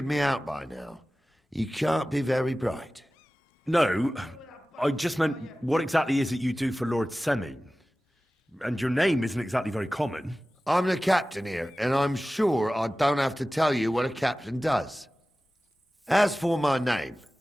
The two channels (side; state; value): both; normal; correlation 0.96